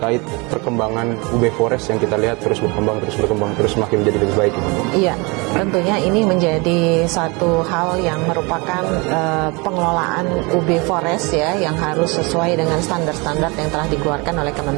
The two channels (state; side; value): quieter; left; 27.6 dB